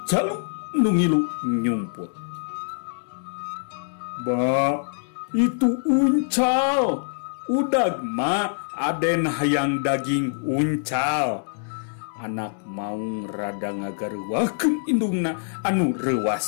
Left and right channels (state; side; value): silent; right; 58 dB below the other